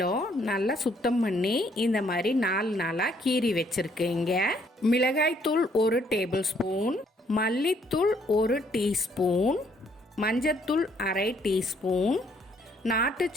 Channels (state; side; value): normal; both; correlation 0.67